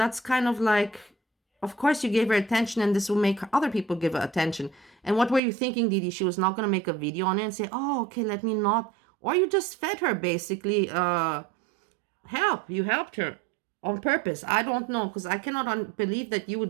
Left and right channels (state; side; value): drops out; left; at 5.4 s